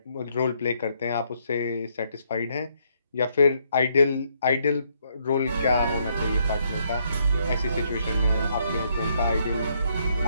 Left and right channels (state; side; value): inverted; both; correlation -0.72